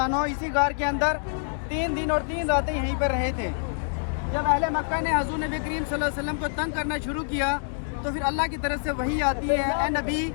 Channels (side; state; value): right; silent; digital silence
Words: अन्हु इसी गार के अंदर 3 दिन और 3 रातें यहीं पर रहे थे। जब अहले मक्का ने हजूर नबी करीम सल्लल्लाहु अलैहि वसल्लम को तंग करना शुरू किया तो फिर अल्लाह की तरफ से वही आती है, ए नबी